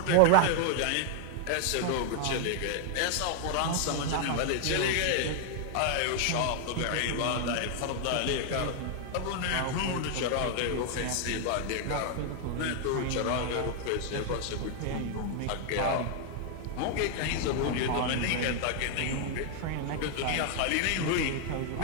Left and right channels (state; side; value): different; both; correlation 0.00